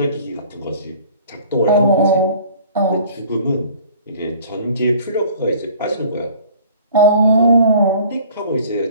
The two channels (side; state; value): both; inverted; correlation -0.50